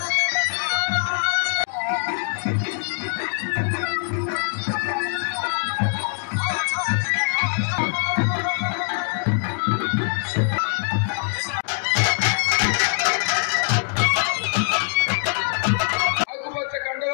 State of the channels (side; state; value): right; silent; 63 dB below the other